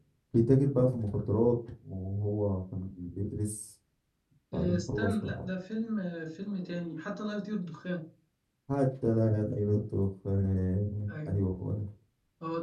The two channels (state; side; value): identical; both; correlation 1.00